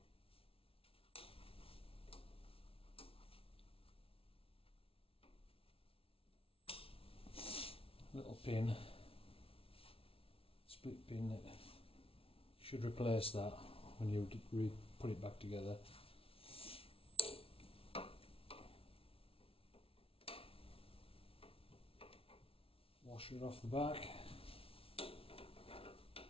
Little pin, split pin that should replace that when you put it back together. Washer off the back.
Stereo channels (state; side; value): late; right; 0.26 ms